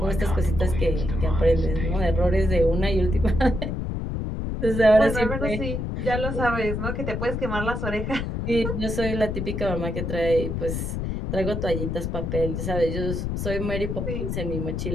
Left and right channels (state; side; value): noise; left; rumble, 3 dB below the sound